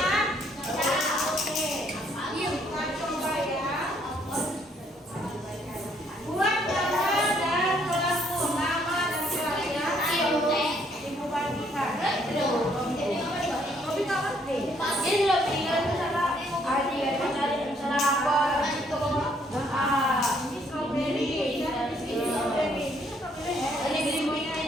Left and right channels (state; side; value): normal; both; correlation 0.67